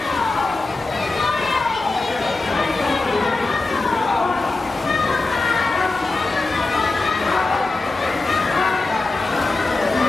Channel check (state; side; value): quieter; right; 3.3 dB